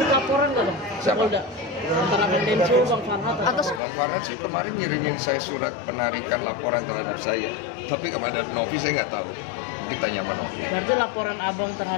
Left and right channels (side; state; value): right; drops out; at 3.8 s